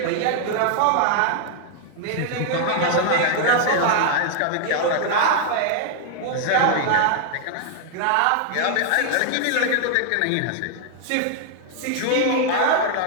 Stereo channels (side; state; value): both; different; correlation 0.00